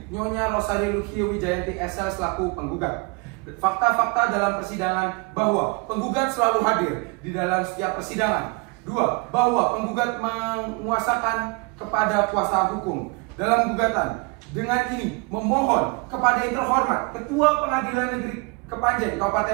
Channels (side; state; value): left; quieter; 29.5 dB